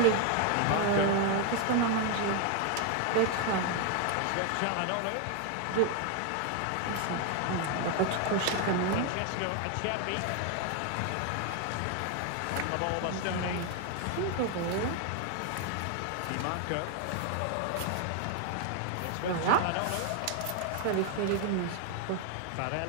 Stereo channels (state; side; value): different; both; correlation 0.01